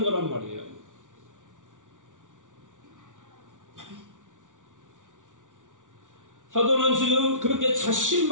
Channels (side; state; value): left; late; 0.87 ms